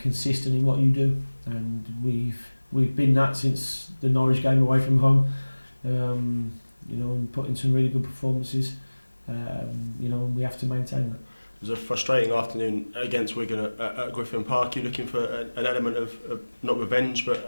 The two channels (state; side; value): inverted; both; correlation -1.00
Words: in what you do. And we've been that since the Norwich game away from home. And put in some really good performances. And we have to maintain that. It was a frustrating afternoon against Wigan at Griffin Park. You're looking for an element of not revenge,